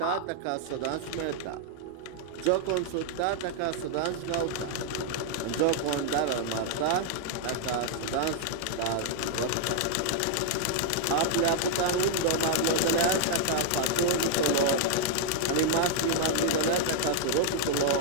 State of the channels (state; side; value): different; both; correlation 0.00